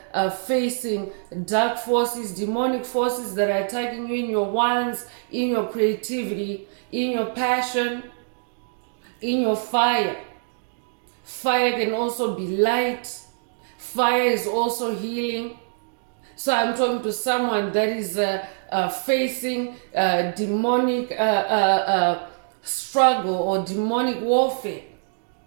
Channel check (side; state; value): left; silent; digital silence